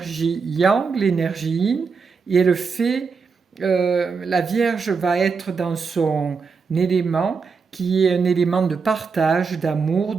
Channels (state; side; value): quieter; left; 5.2 dB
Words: yang, l'énergie yin, et elle fait, la Vierge va être dans son élément, qui est un élément de partage, d'amour,